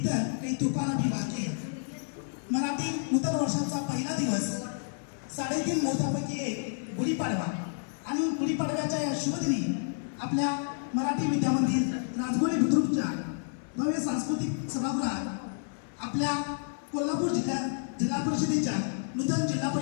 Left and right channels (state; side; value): silent; right; 58 dB below the other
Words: काही तुफान अभी बाकी है. मराठी नूतन वर्षाचा पहिला दिवस 3.5 मुहूर्तापैकी एक गुढीपाडवा आणि गुढीपाडव्याच्या या शुभदिनी आपल्या मराठी विद्यामंदिर राजगोळे बुद्रुकच्या भव्य सांस्कृतिक सभागृहात आपल्या कोल्हापूर जिल्हा परिषदेच्या नूतन जिल्हा